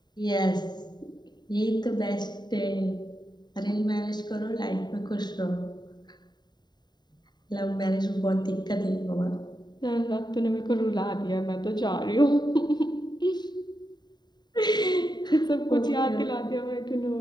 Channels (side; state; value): right; late; 0.21 ms